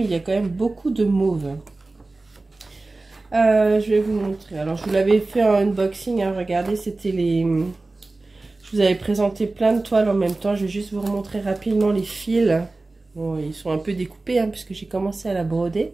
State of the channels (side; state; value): left; quieter; 3.2 dB